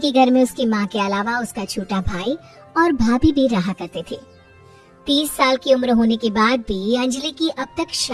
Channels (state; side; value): identical; both; correlation 1.00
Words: घर में उसकी माँ के अलावा उसका छोटा भाई और भाभी भी रहा करते थे। 30 साल की उम्र होने के बाद भी अंजलि की अब तक